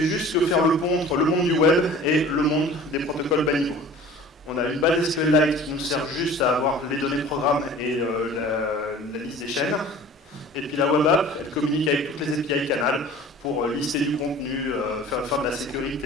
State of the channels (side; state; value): both; normal; correlation 0.44